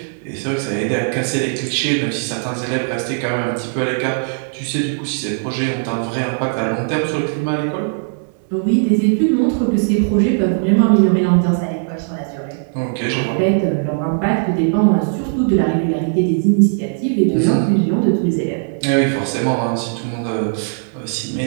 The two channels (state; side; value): silent; left; 67 dB below the other